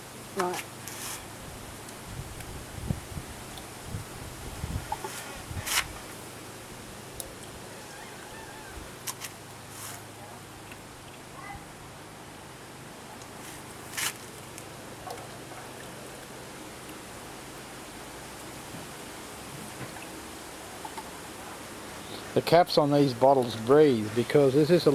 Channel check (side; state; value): both; identical; correlation 1.00